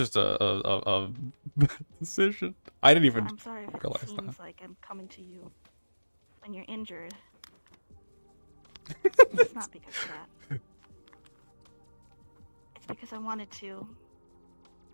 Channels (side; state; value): both; inverted; correlation -1.00